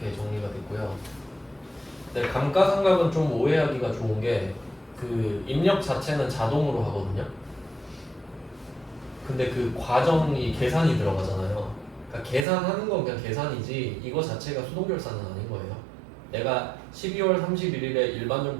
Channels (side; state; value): left; drops out; at 12.5 s